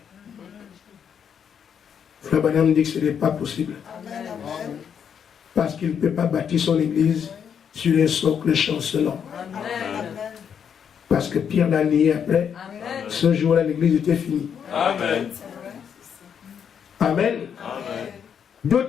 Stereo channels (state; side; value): quieter; right; 7.8 dB